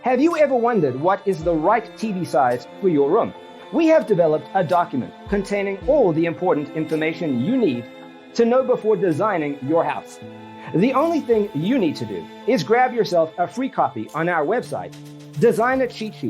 Have you ever wondered what is the right TV size for your room? We have developed a document containing all the important information you need to know before designing your house. The only thing you need to do is grab yourself a free copy on our website,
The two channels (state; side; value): identical; both; correlation 1.00